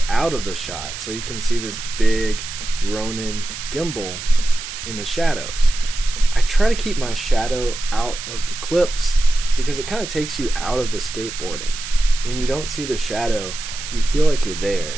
out of the shot, so you can see this big Ronin gimbal in the shadows. I try to keep my shadow out of the clips because it kind of takes you out of the skateboarding. When you don't see the shadow, you feel like you're there.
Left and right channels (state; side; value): noise; right; hiss, 9 dB below the sound